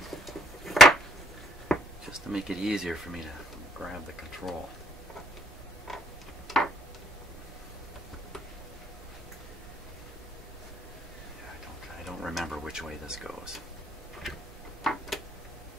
Just to make it easier for me to grab the control. I don't remember which way this goes.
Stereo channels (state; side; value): normal; both; correlation 0.65